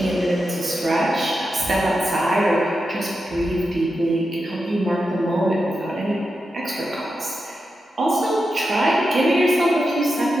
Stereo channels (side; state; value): both; normal; correlation 0.89